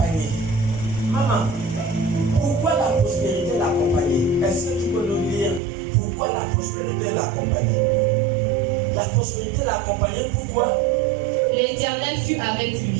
Maman, pourquoi la prospérité l'accompagnait? Est-ce que tu peux nous dire pourquoi la prospérité l'accompagnait? La prospérité l'accompagnait, pourquoi? L'Éternel fut avec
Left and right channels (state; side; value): drops out; left; at 5.6 s